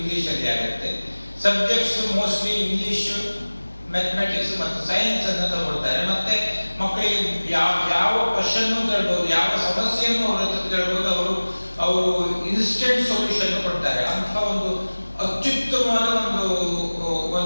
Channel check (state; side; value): inverted; both; correlation -1.00